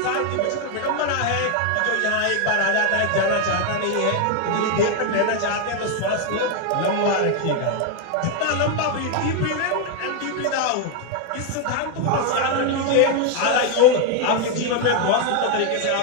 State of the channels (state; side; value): different; both; correlation 0.01